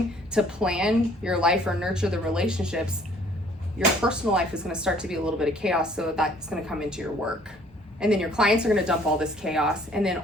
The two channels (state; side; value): normal; both; correlation 0.58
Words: to plan your life or nurture the relationships, your personal life is gonna start to be a little bit of chaos, so that's gonna come into your work. And then your clients are gonna dump all this chaos, and then